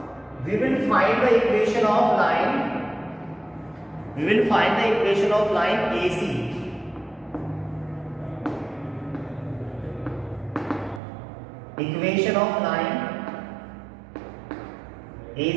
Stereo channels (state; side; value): drops out; left; at 11.0 s